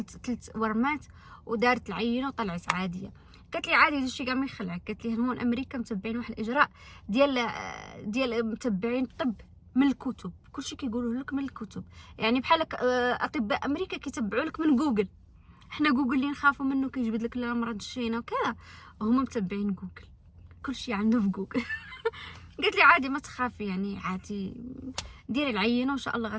ورمات، ودارت العينه وطلعت عاديه. قالت لي عادي هادشي كاع ما يخلعك. قالت لي هون امريكا متبعين واحد الاجراء ديال متبعين الطب من الكتب، كلشي كيقولوه لك من الكتب، يعني بحال اطباء امريكا كيتبعوا لك من جوجل. حنا جوجل اللي نخافوا منه كيجبد لك الامراض الشينه وكذا، وهما متبعين جوجل، كلشي عنده في جوجل. قالت لي عادي ما تخافي، يعني عادي ديري العينه وان شاء الله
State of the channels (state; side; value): identical; both; correlation 1.00